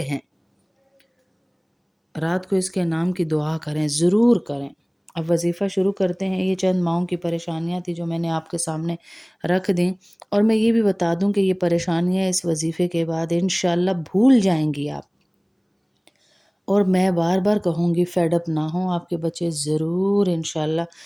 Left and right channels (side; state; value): both; identical; correlation 1.00